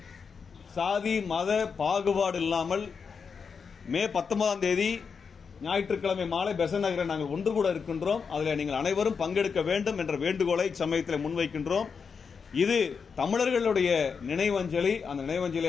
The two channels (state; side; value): quieter; right; 5.8 dB